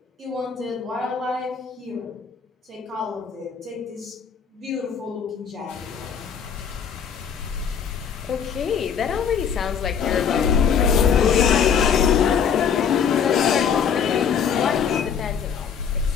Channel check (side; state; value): right; quieter; 7.2 dB